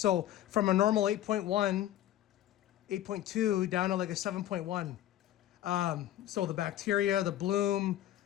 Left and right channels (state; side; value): quieter; right; 12.8 dB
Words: from a normal 8.1, 8.2 down to like a 7.1. So the bacteria, the bloom,